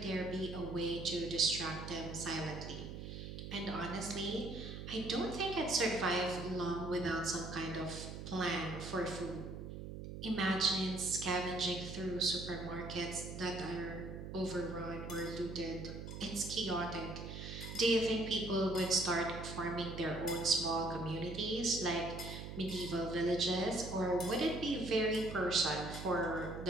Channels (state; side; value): noise; right; hum, 8 dB below the sound